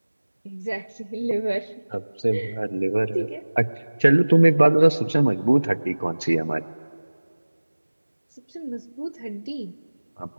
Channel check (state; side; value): inverted; both; correlation -1.00